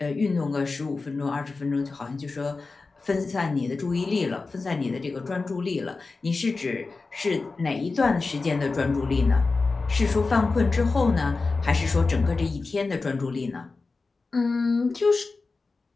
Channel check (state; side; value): quieter; right; 3.9 dB